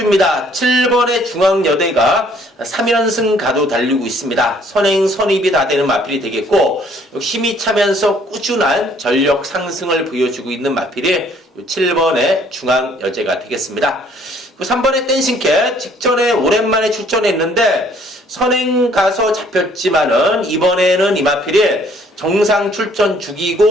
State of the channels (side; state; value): both; normal; correlation 0.61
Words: 7번의 중앙여대가 3연승 가도 달리고 있습니다. 선행, 선입이 다 되는 마필이 되겠고 힘이 차면서 꾸준한 전력 상승을 보여주고 있는 마필이 7번의 중앙여대가 되겠습니다. 3번의 댄싱캣 직전에 오랜만에 출전했는데 선행 가서 잡혔지만은 이번에는 이마필이 정상 출전